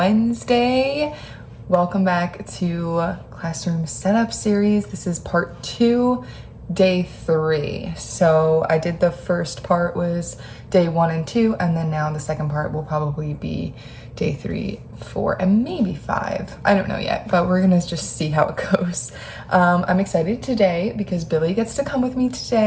Welcome back to Classroom Setup Series. This is part 2, day 3. So I did the first part was day 1 and 2, and then now the second part will probably be day 3, 4, and maybe 5. I don't know yet, but we're gonna just see how it goes. I'm excited today because Billy gets to come with me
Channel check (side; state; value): both; identical; correlation 1.00